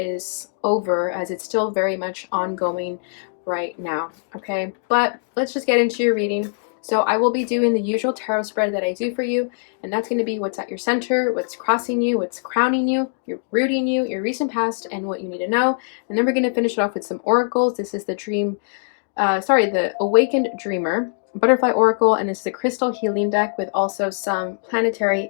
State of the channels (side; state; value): right; silent; digital silence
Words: over, as it's still very much ongoing right now. Okay, but let's just get into your reading. So I will be doing the usual tarot spread that I do for you, and that's going to be what's at your center, what's crossing you, what's crowning you, your rooting you, your recent past, and what you need to know. And then we're going to finish it off with some oracles. This is the the Awakened Dreamer Butterfly Oracle, and it's the Crystal Healing deck with also some planetary